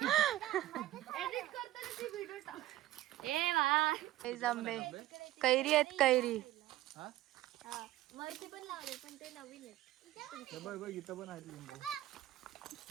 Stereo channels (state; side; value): quieter; left; 15.5 dB